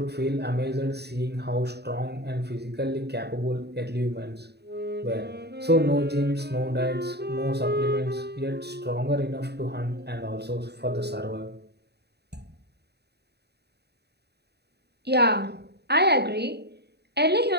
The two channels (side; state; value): left; late; 0.48 ms